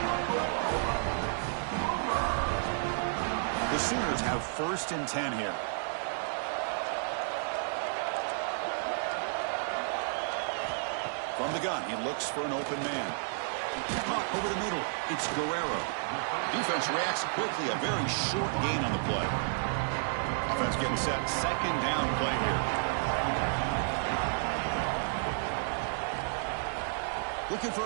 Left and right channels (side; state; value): left; silent; digital silence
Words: The Sooners have first and 10 here. From the gun, he looks for an open man. Caught over the middle. It's Guerrero. Defense reacts quickly. A very short gain on the play. Offense getting set. Second down play here. Looking for